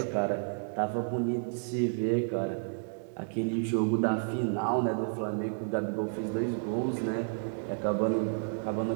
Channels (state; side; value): silent; left; digital silence